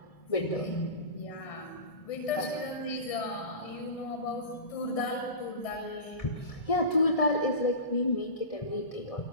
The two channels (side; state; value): right; late; 1.7 ms